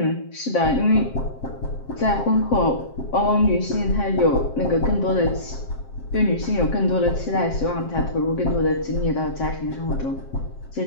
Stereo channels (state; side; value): late; right; 7.6 ms